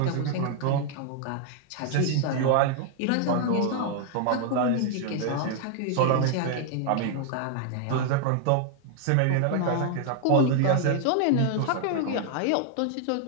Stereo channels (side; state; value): both; different; correlation 0.00